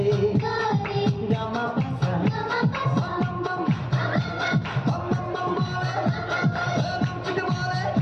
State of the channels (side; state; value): both; identical; correlation 1.00